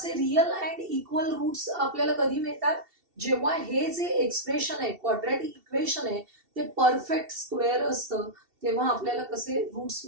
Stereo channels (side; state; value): left; late; 2.7 ms